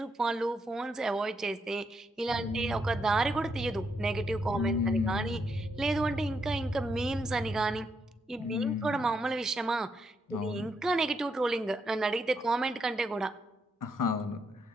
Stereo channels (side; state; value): both; normal; correlation 0.79